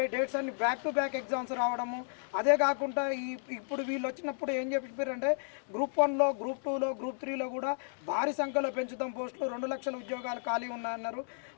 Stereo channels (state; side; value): silent; right; digital silence